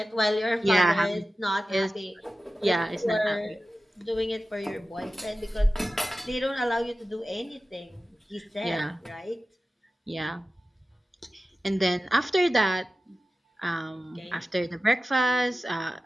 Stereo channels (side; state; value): both; normal; correlation 0.95